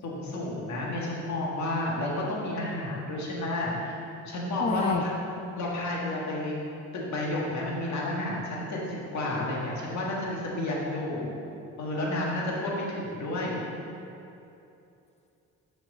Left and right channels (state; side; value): normal; both; correlation 0.20